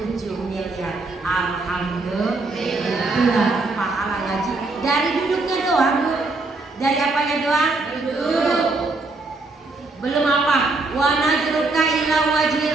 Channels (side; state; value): left; quieter; 3.4 dB